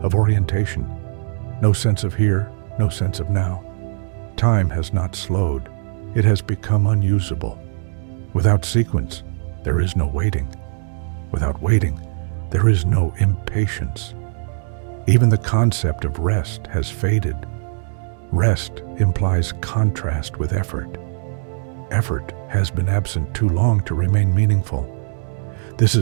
of orientation. No sense of here, no sense of now. Time has not slowed. It has become unusable. Without sequence, there is no waiting. Without waiting, there is no impatience. Even the concept of rest has faded. Rest implies contrast with effort. Effort has been absent too long to remain meaningful. This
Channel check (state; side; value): silent; left; digital silence